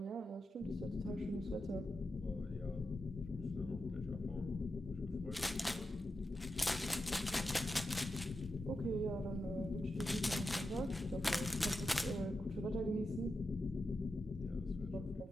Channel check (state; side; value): normal; both; correlation 0.89